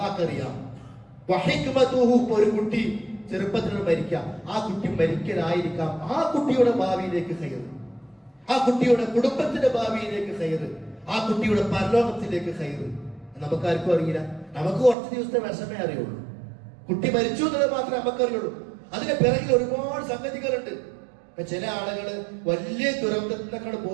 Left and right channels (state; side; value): drops out; left; at 15.0 s